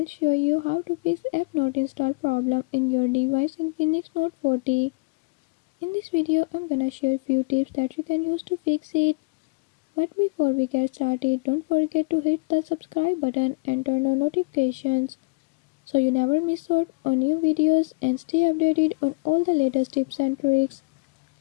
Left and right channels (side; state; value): right; quieter; 29.0 dB